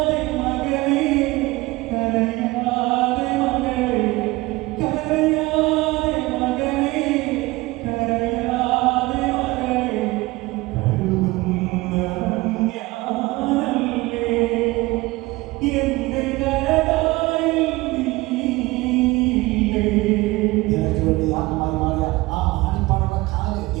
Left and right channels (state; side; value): quieter; left; 21.0 dB